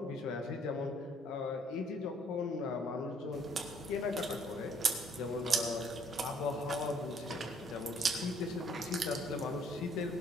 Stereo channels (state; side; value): normal; both; correlation 0.63